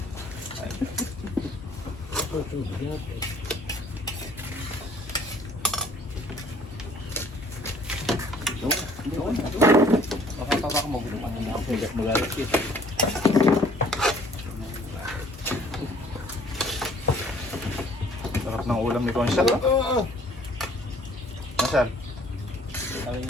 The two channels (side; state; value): both; normal; correlation 0.56